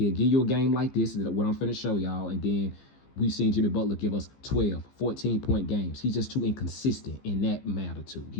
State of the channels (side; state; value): right; late; 15 ms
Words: give you a game like this, what I'm finna show y'all, and then we've seen Jimmy Butler give us 12, 14-point games. He's just too inconsistent in that magnitude.